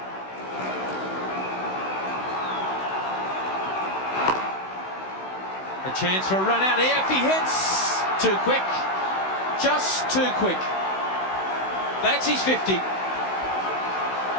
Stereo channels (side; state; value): right; late; 16 ms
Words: A chance for a run out here. If he hits, too quick. Just too quick. That's his 50.